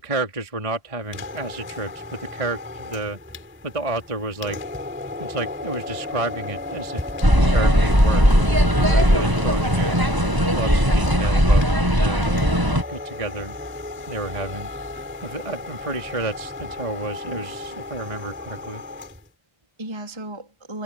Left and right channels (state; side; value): late; left; 1.0 ms